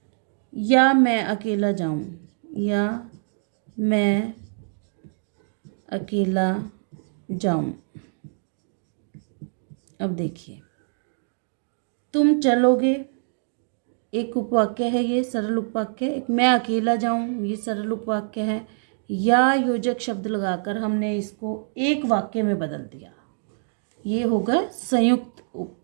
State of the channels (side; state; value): left; silent; digital silence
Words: या मैं अकेला जाऊं, या मैं अकेला जाऊं। अब देखिए, तुम चलोगे एक उपवाक्य है, ये सरल उपवाक्य। एक मैं अकेला जाऊं, ये सरल उपवाक्य है। या योजक शब्द लगाकर हमने इसको एक वाक्य में बदल दिया, ये होगा संयुक्त